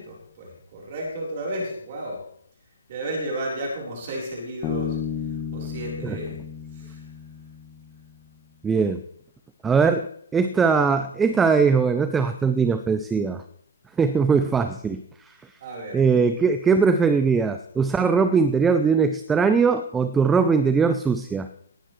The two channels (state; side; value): quieter; left; 4.5 dB